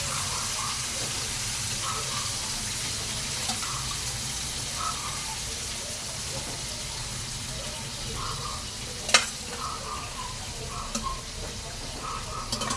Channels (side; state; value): both; identical; correlation 1.00